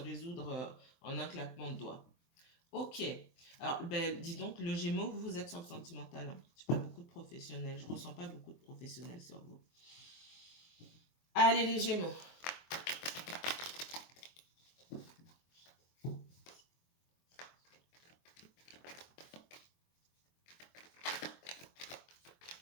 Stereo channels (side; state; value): right; late; 23 ms